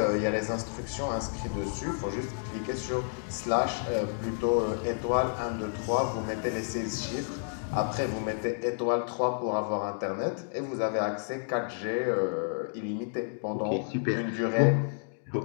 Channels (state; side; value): silent; right; digital silence